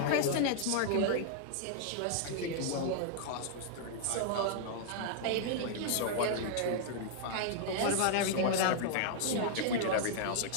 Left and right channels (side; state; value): both; different; correlation -0.01